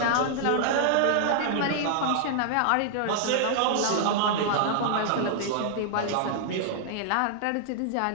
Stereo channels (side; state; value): both; different; correlation -0.01